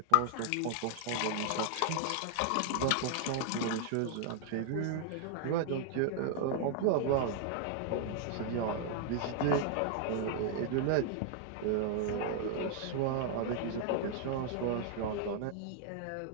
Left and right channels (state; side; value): different; both; correlation 0.00